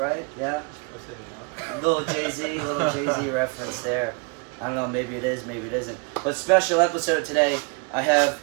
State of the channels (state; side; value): quieter; left; 32.5 dB